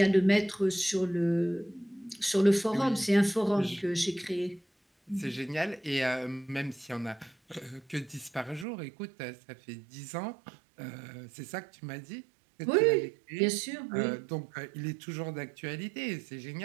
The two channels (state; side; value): drops out; left; at 8.7 s